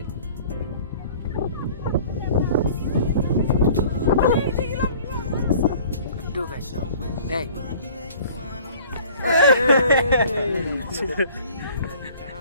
Aduh guys. Nih.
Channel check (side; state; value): both; inverted; correlation -0.50